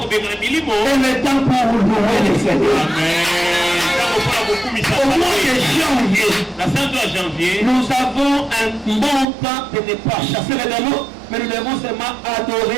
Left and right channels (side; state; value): left; drops out; at 9.2 s